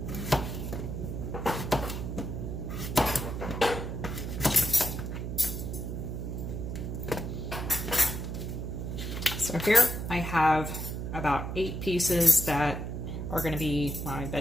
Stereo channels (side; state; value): right; noise; hum, 4 dB below the sound